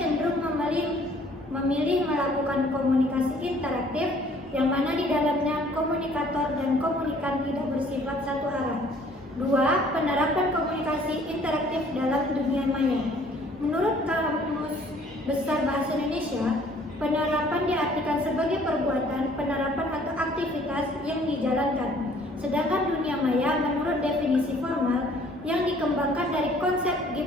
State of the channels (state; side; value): normal; both; correlation 0.57